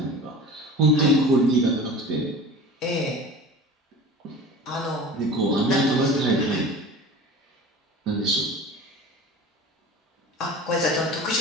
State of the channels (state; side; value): normal; both; correlation 0.37